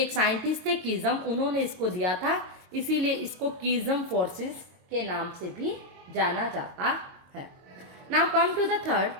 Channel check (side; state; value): left; late; 22 ms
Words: साइंटिस्ट थे कीज़म, उन्होंने इसको दिया था, इसीलिए इसको कीज़म फोर्सेस के नाम से भी जाना जाता है। Now come to the third,